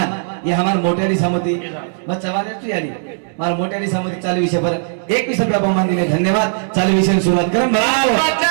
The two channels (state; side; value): silent; left; digital silence